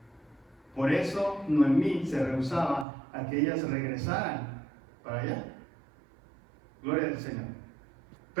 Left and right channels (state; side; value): drops out; left; at 2.9 s